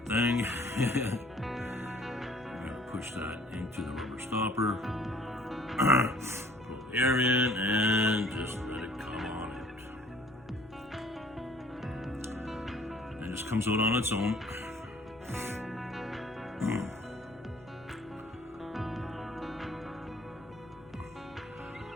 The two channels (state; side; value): normal; both; correlation 0.55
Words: thing. I'm gonna push that into the rubber stopper. Pull the air in and just let it come on out. It just comes out on its own.